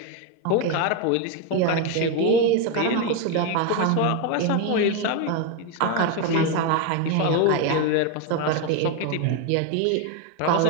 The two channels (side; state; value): both; different; correlation 0.02